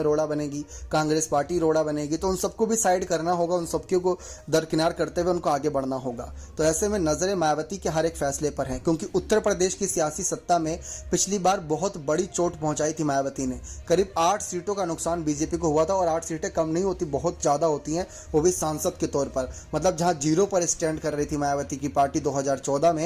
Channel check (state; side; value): identical; both; correlation 1.00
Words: रोड़ा बनेगी, कांग्रेस पार्टी रोड़ा बनेगी, तो उन सबको भी साइड करना होगा, उन सबको को दरकिनार करते हुए उनको आगे बढ़ना होगा। तो ऐसे में नजरें मायावती के हर एक फैसले पर हैं, क्योंकि उत्तर प्रदेश की सियासी सत्ता में पिछली बार बहुत बड़ी चोट पहुंचाई थी मायावती ने। करीब 8 सीटों का नुकसान बीजेपी को हुआ था, और 8 सीटें कम नहीं होती, बहुत ज्यादा होती हैं, वो भी सांसद के तौर पर। मतलब जहां जीरो पर स्टैंड कर रही थी मायावती की पार्टी 2014